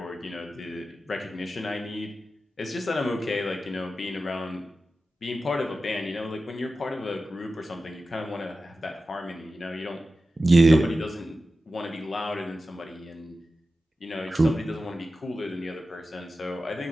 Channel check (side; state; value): both; normal; correlation 0.93